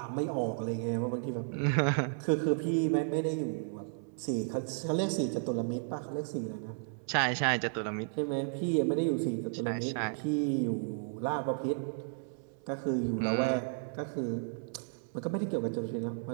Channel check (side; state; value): left; silent; 56 dB below the other